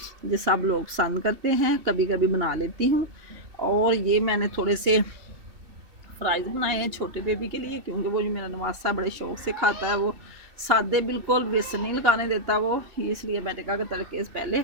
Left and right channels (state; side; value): late; left; 2.9 ms